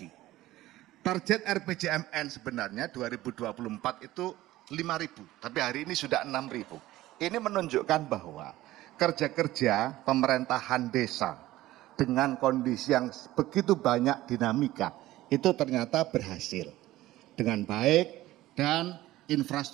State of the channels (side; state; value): left; quieter; 16.1 dB